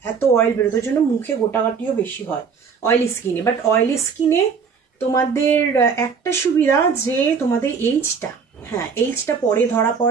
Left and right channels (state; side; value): quieter; left; 6.0 dB